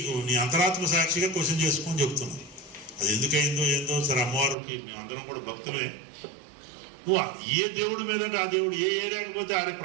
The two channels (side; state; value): left; drops out; at 4.5 s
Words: నీ అంతరాత్మ సాక్షిగా క్వశ్చన్ చేసుకొని చెప్తున్నావు. అది ఎందుకైందో ఏందో సరే, అమ్మవారికి మేమందరం కూడా భక్తులే. నువ్వు ఏ దేవుడి మీద అంటే ఆ దేవుడు ఏ ఏరియాకి పోతే ఆడే